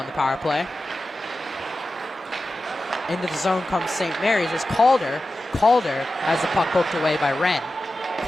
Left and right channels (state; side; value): normal; both; correlation 0.93